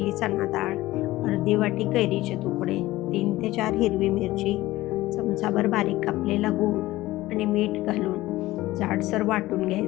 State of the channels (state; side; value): quieter; right; 17.4 dB